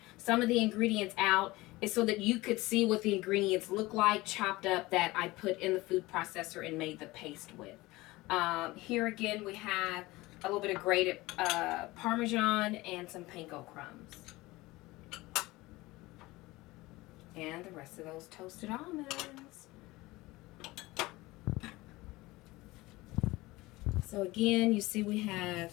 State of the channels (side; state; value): right; quieter; 20.3 dB